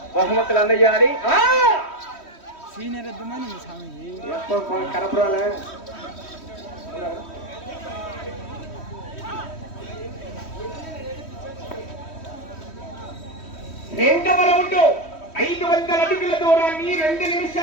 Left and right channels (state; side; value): late; right; 3.1 ms